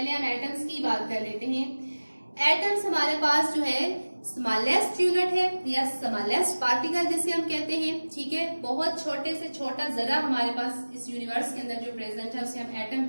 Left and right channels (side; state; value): both; inverted; correlation -1.00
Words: हम एटम्स की बात कर लेते हैं. एटम्स हमारे पास जो है स्मॉलेस्ट यूनिट है या स्मॉलेस्ट पार्टिकल जिसे हम कहते हैं. ठीक है, बहुत छोटे से छोटा जरा हमारे पास इस यूनिवर्स के अंदर जो प्रेजेंट है उसे हम एटम